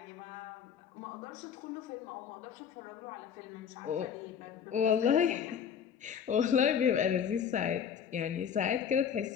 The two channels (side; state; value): right; quieter; 7.9 dB